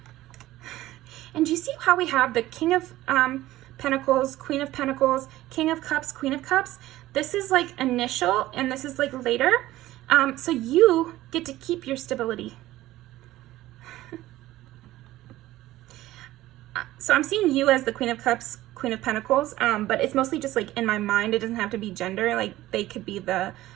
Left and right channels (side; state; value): left; quieter; 15.9 dB